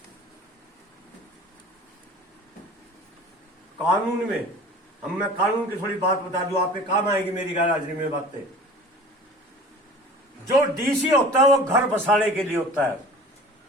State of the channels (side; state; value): both; normal; correlation 0.42